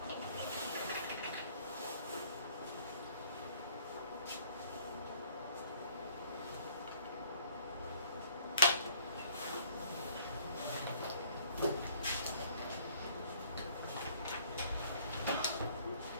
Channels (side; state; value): both; inverted; correlation -0.59